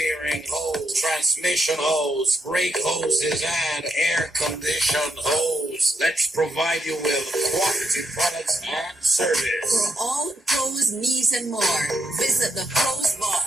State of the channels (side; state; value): both; normal; correlation 0.80